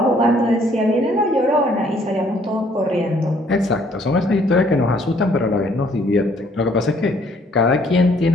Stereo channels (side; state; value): both; normal; correlation 0.63